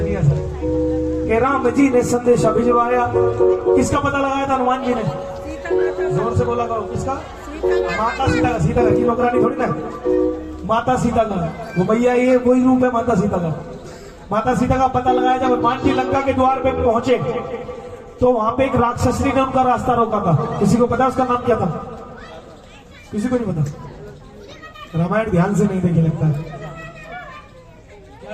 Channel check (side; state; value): both; identical; correlation 1.00